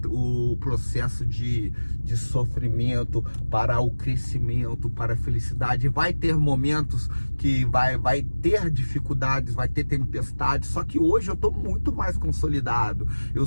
processo de sofrimento para o crescimento, para a felicidade. Vai ter momentos que vai ter dificuldades, vai ter tempestades, só que hoje eu estou muito mais consolidado.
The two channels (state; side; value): inverted; both; correlation -1.00